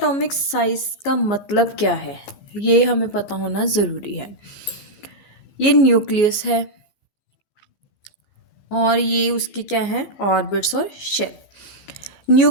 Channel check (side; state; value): right; late; 14 ms